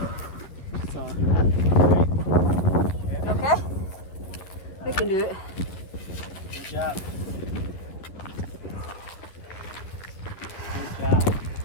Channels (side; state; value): right; late; 11 ms